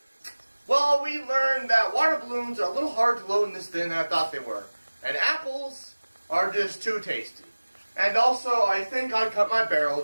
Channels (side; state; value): both; inverted; correlation -1.00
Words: Well, we learned that water balloons are a little hard to load in this thin than I thought they were, and apples are just too tasty. And also, I think I cut my